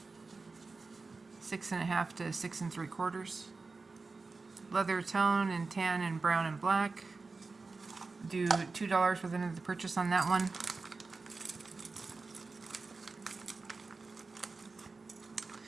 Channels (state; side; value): quieter; left; 4.0 dB